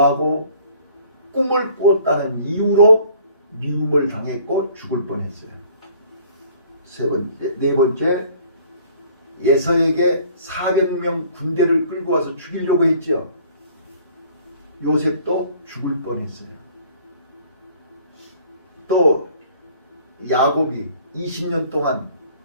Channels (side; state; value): both; inverted; correlation -0.55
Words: 꿈을 꾸었다는 이유로 미움을 당했고 죽을 뻔했어요. 네 번째, 예서에게 400명 군대를 끌고 와서 죽이려고 했죠. 요셉도 죽을 뻔했어요. 또 야곱이 20년 동안